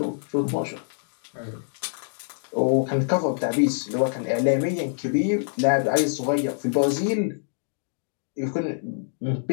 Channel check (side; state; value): right; silent; digital silence